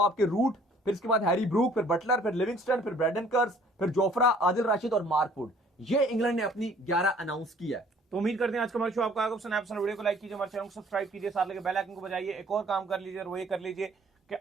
आपके रूट, फिर इसके बाद हैरी ब्रूक, फिर बटलर, फिर लिविंगस्टन, फिर ब्रेडन कर्स, फिर जोफ्रा, आदिल राशिद और मार्क वुड। ये इंग्लैंड ने अपनी 11 अनाउंस किया है। तो उम्मीद करते हैं आज का हमारा शो आपको आएगा पसंद। वीडियो को लाइक कीजिए, हमारे चैनल को सब्सक्राइब कीजिए, साथ लगे बेल आइकन को बजाइए। एक और काम कर लीजिए और वो ये कर लीजिए कि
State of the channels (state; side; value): normal; both; correlation 0.56